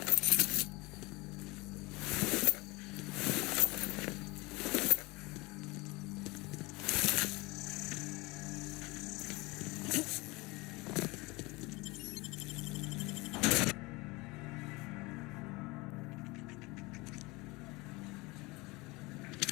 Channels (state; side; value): quieter; right; 23.7 dB